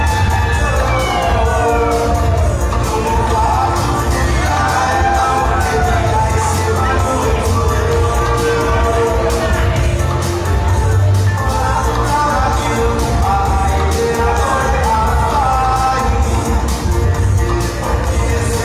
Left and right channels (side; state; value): both; identical; correlation 1.00